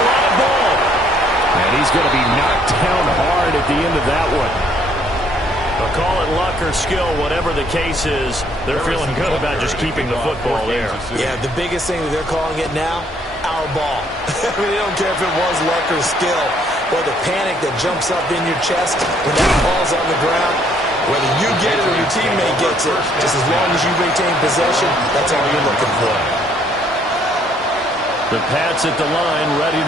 live ball. And he's going to be knocked down hard at the end of that one. They'll call it luck or skill, whatever the case is. They're feeling good about just keeping the football there. Yeah, the biggest thing that they're calling it now, our ball. I mean, they don't care if it was luck or skill, or the panic that jumps up in your chest when that ball's on the ground. Whether you get it or your teammate gets it, just as long as you retain possession, that's all you're looking for. The Pats at the line, ready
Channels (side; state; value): both; normal; correlation 0.65